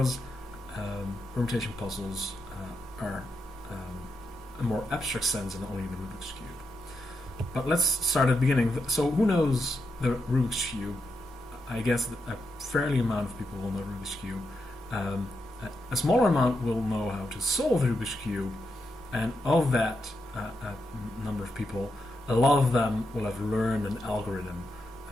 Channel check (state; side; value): normal; both; correlation 0.85